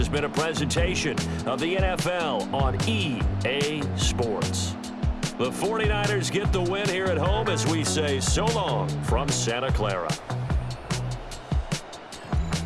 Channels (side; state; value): both; identical; correlation 1.00